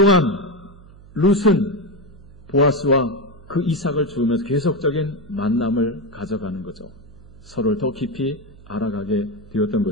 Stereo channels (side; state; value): right; noise; hum, 22 dB below the sound